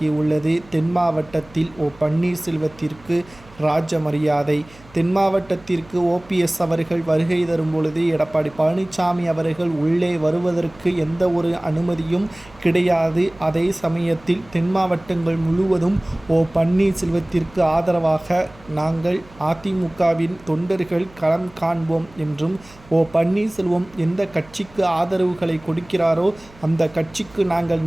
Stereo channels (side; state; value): right; noise; hum, 24 dB below the sound